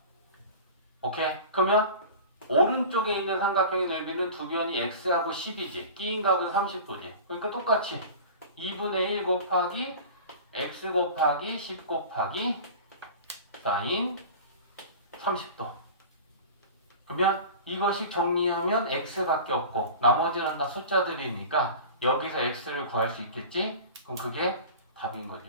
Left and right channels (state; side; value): inverted; both; correlation -0.36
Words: 오케이? 그러면 오른쪽에 있는 삼각형의 넓이는 두 변이 x하고 10이지. 끼인각은 30도지. 그러니까 똑같이 2분의 1 곱하기 x 곱하기 10 곱하기 사인 30도. 그러면 이것이 정리하면 x밖에 없고 나머지는 다 숫자들이니까 여기서 x를 구할 수 있겠지? 그럼 그게 답인 거죠.